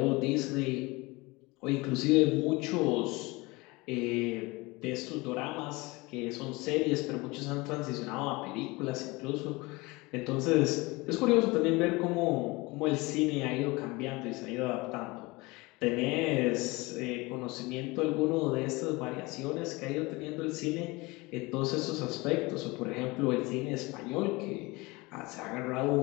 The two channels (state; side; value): quieter; right; 23.7 dB